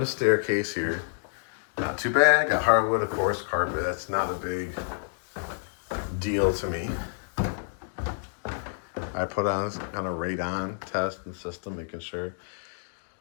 staircase here. Not too bad. Got hardwood, of course, carpet. That's not a big deal to me. I put on kind of radon test and system, making sure.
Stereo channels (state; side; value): silent; right; digital silence